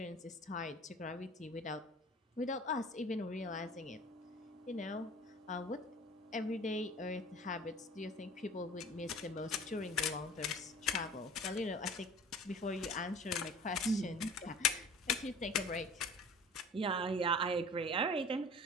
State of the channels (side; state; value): both; normal; correlation 0.43